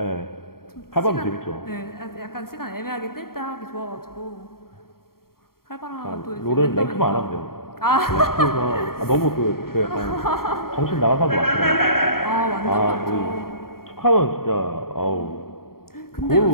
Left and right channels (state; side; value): late; right; 0.93 ms